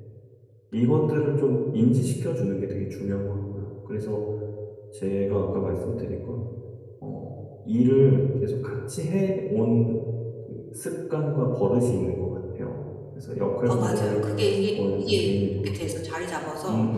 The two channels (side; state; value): both; identical; correlation 1.00